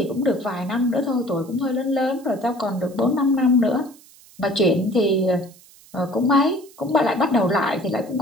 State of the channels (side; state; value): right; noise; hiss, 25 dB below the sound